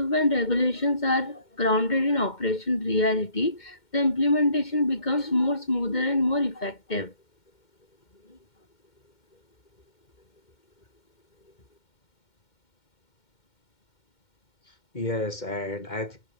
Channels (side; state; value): right; late; 2.1 ms